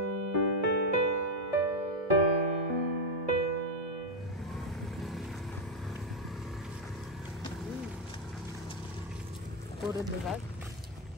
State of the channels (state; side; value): normal; both; correlation 0.02